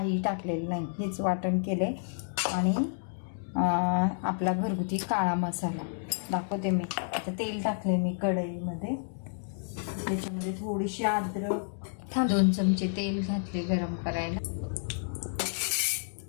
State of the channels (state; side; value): silent; right; digital silence